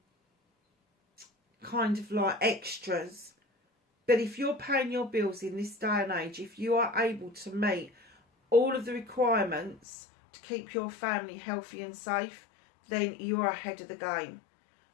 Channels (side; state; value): right; drops out; at 9.8 s